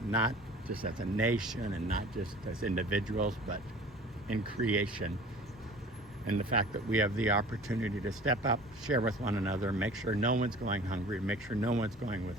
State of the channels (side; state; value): both; normal; correlation 0.44